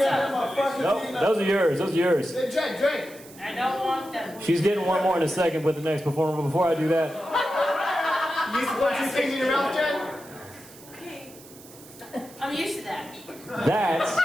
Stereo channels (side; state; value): right; noise; hiss, 20 dB below the sound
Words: Nope. Those are yours. Those are yours. Drink. I don't want them. She's getting one more in a second with the next performer. But before I do that, You used to put two things in your mouth, Jen? Okay. I'm used to that.